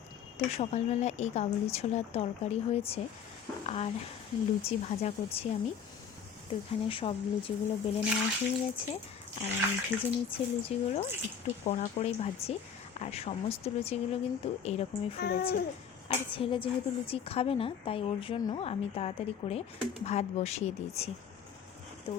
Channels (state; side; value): quieter; right; 7.3 dB